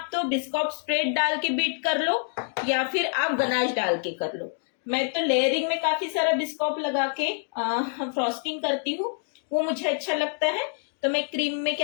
तो बिस्कॉप स्प्रेड डाल के बीट कर लो या फिर आप गनाश डाल के कर लो। मैं तो लेयरिंग में काफी सारा बिस्कॉप लगा के फ्रॉस्टिंग करती हूँ, वो मुझे अच्छा लगता है। तो मैं क्रीम में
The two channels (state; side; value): silent; right; 57 dB below the other